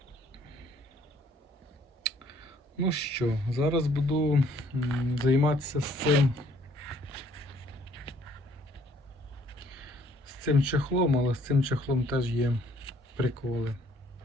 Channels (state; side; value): normal; both; correlation 0.62